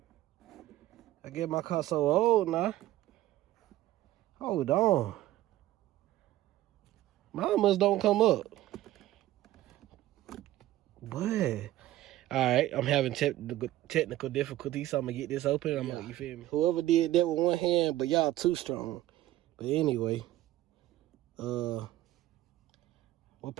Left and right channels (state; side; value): quieter; left; 15.1 dB